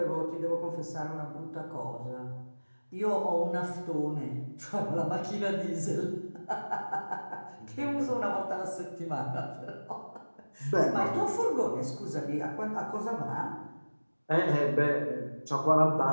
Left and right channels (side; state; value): both; inverted; correlation -1.00